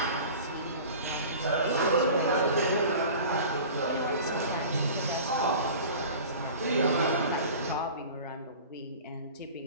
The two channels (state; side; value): inverted; both; correlation -0.40